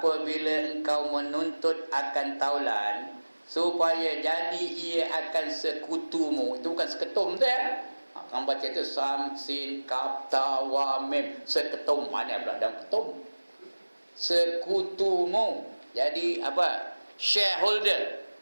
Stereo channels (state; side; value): inverted; both; correlation -1.00